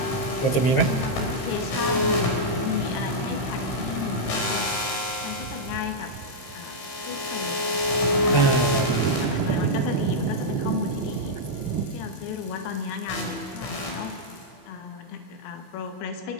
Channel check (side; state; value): right; late; 15 ms